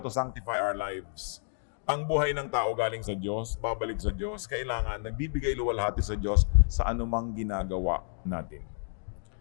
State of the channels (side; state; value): right; silent; digital silence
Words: to sanctify our lives. Ang buhay ng tao galing sa Diyos, babalik sa Diyos, kailangan nagbibigay luwalhati sa Diyos sa anumang ginagawa natin.